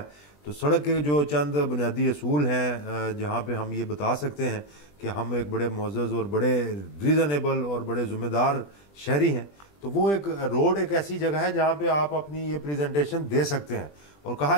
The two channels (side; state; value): right; late; 20 ms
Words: तो सड़क के जो चंद बुनियादी असूल हैं जहाँ पे हम ये बता सकते हैं कि हम एक बड़े मुअज़्ज़ज़ और बड़े रीज़नेबल और बड़े ज़िम्मेदार शहरी हैं, तो वो एक रोड एक ऐसी जगह है जहाँ पे आप अपनी ये प्रेजेंटेशन दे सकते हैं। और कहा